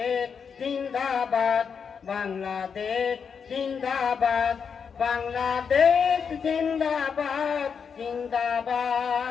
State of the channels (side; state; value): right; quieter; 6.4 dB